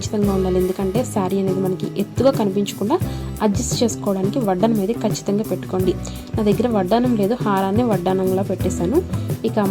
ఉండాలి. ఎందుకంటే శారీ అనేది మనకి ఎత్తుగా కనిపించకుండా అడ్జస్ట్ చేసుకోవడానికి వడ్డానం అనేది ఖచ్చితంగా పెట్టుకోండి. నా దగ్గర వడ్డానం లేదు, హారాన్ని వడ్డానంలా పెట్టేశాను. ఇక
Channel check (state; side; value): identical; both; correlation 1.00